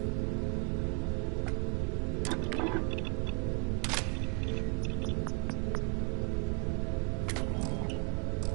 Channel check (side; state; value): left; quieter; 33.6 dB